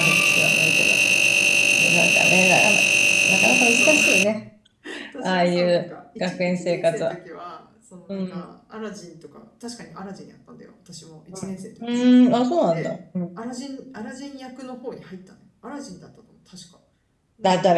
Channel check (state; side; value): identical; both; correlation 1.00